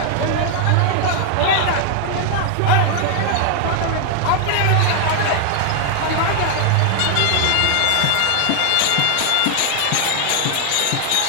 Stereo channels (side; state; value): both; different; correlation 0.00